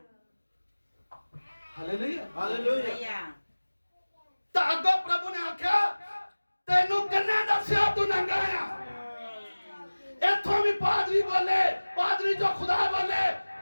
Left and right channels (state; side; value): inverted; both; correlation -1.00